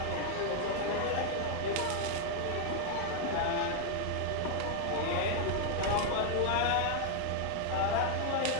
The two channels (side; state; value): both; different; correlation 0.00